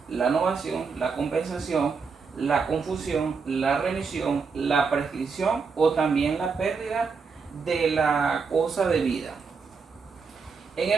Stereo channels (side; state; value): left; quieter; 5.2 dB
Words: la novación, la compensación, la confusión, la remisión, la prescripción o también la pérdida de la cosa debida. En